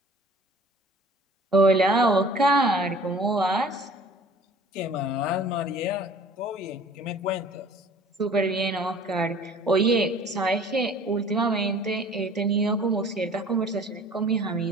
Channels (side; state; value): both; normal; correlation 0.49